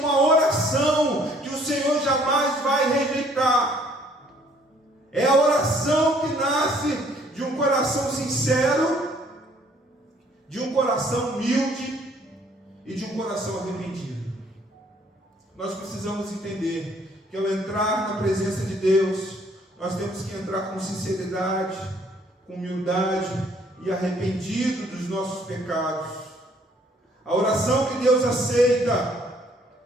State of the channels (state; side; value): normal; both; correlation 0.62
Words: oração que o Senhor jamais vai rejeitar. É a oração que nasce de um coração sincero, de um coração humilde e de um coração arrependido. Nós precisamos entender que ao entrar na presença de Deus, nós temos que entrar com sinceridade, com humildade e arrependido dos nossos pecados. A oração que Deus aceita,